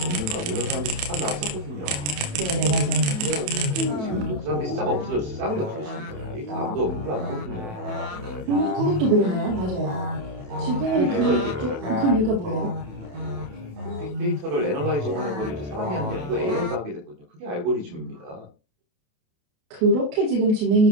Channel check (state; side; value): late; left; 28 ms